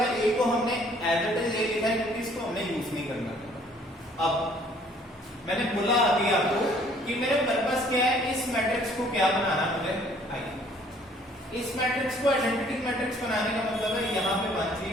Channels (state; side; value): normal; both; correlation 0.59